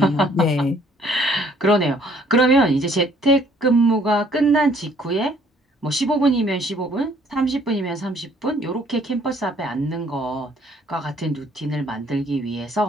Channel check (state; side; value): normal; both; correlation 0.61